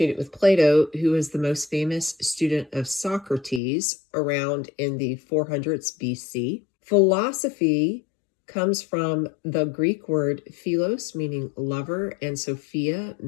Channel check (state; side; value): drops out; right; at 3.6 s